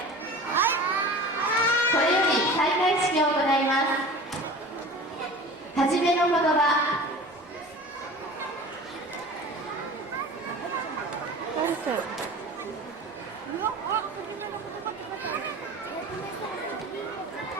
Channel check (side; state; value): both; normal; correlation 0.38